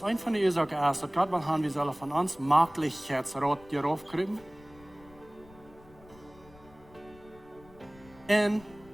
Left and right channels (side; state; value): left; noise; rumble, 24 dB below the sound